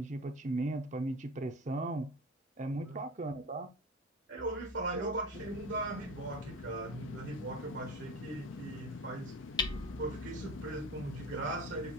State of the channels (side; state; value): both; normal; correlation 0.31